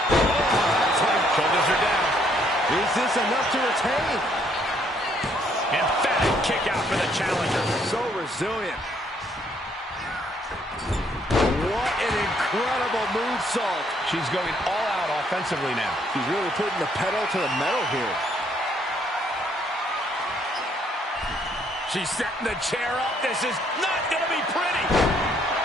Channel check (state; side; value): normal; both; correlation 0.68